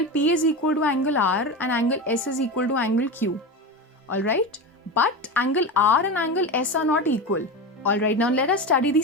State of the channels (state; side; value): normal; both; correlation 0.23